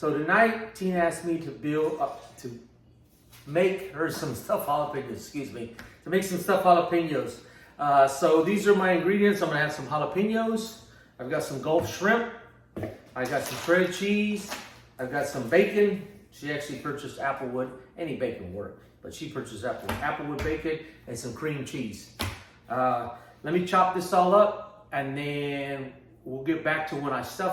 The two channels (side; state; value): both; identical; correlation 1.00